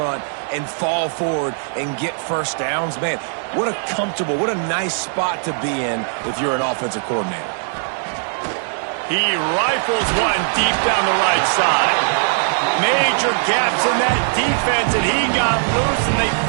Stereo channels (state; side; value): silent; left; digital silence